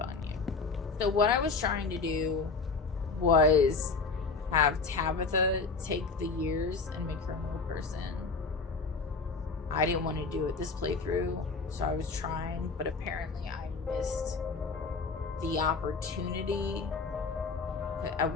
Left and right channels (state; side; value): quieter; right; 4.4 dB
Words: you. So what I was trying to do was have Tabitha take the years and make her a real person. I didn't want to do it this playthrough, so I was trying, but apparently I missed the opportunity. At